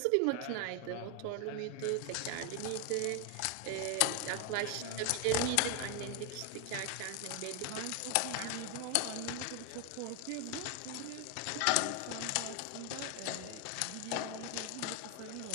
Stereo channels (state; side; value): different; both; correlation 0.01